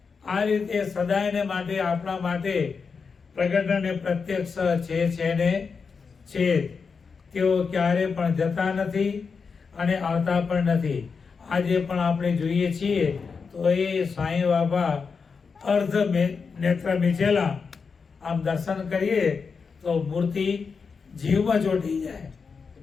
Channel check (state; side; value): quieter; right; 5.3 dB